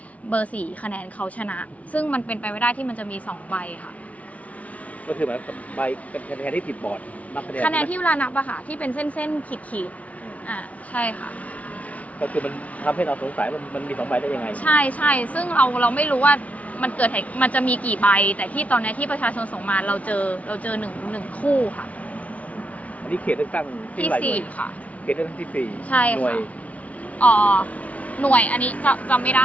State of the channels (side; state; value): right; late; 0.069 ms